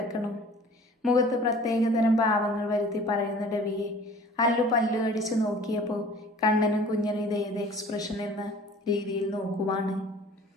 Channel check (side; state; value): both; normal; correlation 0.48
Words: മുഖത്ത് പ്രത്യേകതരം ഭാവങ്ങൾ വരുത്തി പറയുന്ന രവിയെ അല്ലു പല്ലു കടിച്ചു നോക്കിയപ്പോൾ കണ്ണനും കുഞ്ഞനും ഇതേത് എക്സ്പ്രഷൻ എന്ന രീതിയിൽ നോക്കുവാണ്.